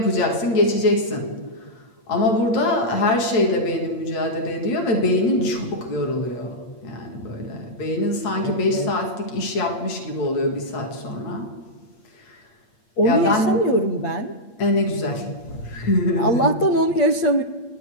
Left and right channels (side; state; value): right; late; 8.6 ms